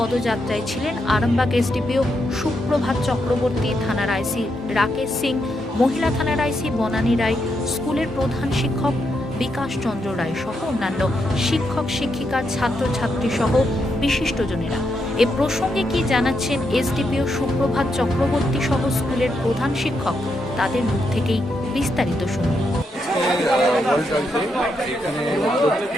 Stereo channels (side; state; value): both; normal; correlation 0.81